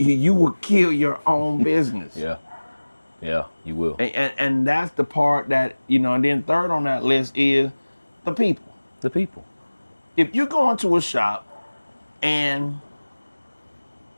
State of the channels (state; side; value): inverted; both; correlation -1.00